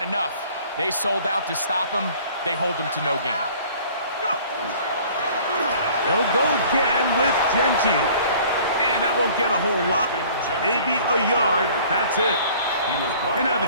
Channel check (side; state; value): both; inverted; correlation -0.51